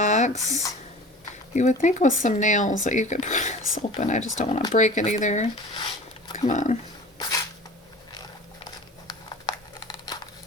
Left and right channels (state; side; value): normal; both; correlation 0.40